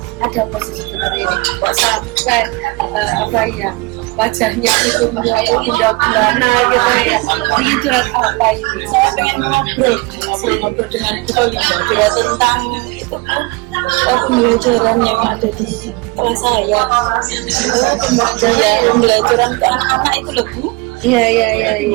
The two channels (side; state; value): left; quieter; 24.9 dB